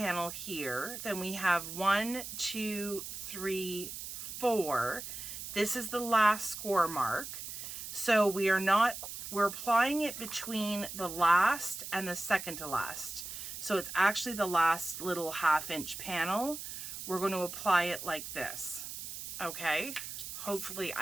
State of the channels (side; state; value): right; noise; hiss, 8 dB below the sound